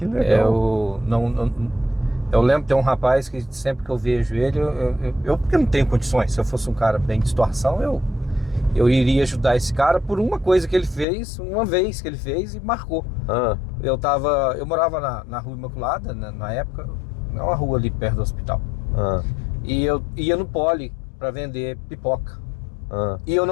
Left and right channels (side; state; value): right; drops out; at 11.1 s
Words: legal. Eu lembro, tem um rapaz que sempre que eu vejo ele, porque não tenho condições, se eu fosse um cara bem de situação, eu iria ajudar esse cara por uma coisa que ele fez, uma vez que ele fez e marcou. Eu morava na Rua Imaculada, na época, é uma rua ali perto do hospital. E eu ia no Poli para vender pipoca. E eu